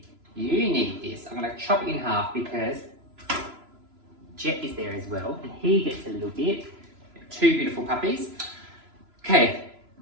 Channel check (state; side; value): late; left; 3.0 ms